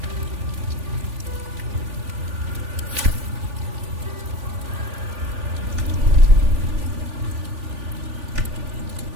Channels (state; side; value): late; left; 3.4 ms